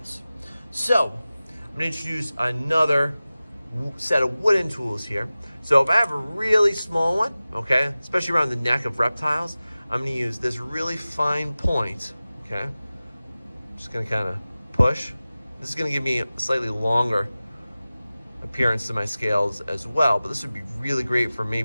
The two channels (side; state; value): both; inverted; correlation -0.97